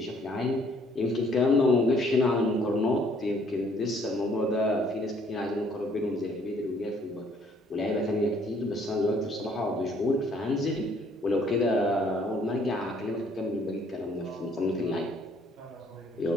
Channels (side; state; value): both; normal; correlation 0.63